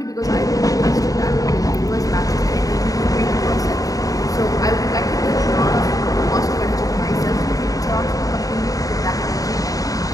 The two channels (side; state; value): right; late; 0.17 ms